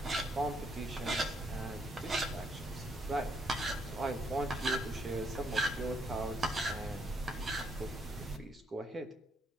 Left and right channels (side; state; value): both; normal; correlation 0.72